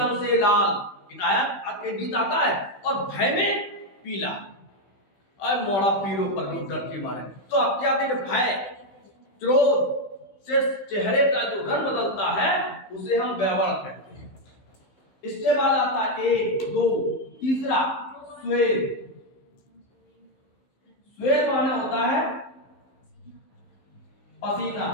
से लाल, एक गीत आता है। और भय में पीला, और मोड़ा पीरो पर डर के मारे। तो अत्याधिक भय, क्रोध से चेहरे का जो रंग बदलता है उसे हम वैवर कहते हैं। इसके बाद आता है 1, 2, तीसरा श्वेत। श्वेत माने होता है पसीना।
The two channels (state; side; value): late; right; 15 ms